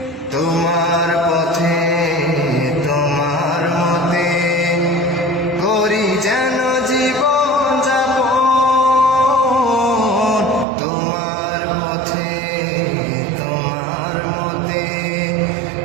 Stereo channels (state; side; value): drops out; left; at 10.7 s